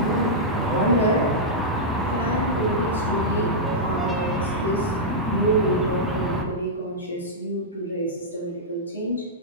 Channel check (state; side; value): normal; both; correlation -0.09